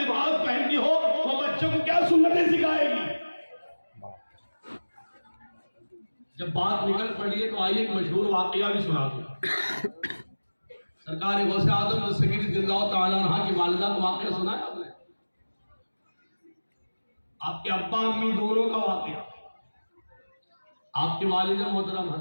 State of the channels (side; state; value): both; inverted; correlation -1.00